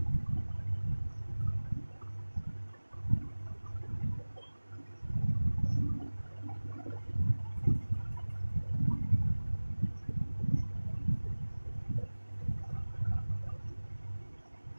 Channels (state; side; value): inverted; both; correlation -1.00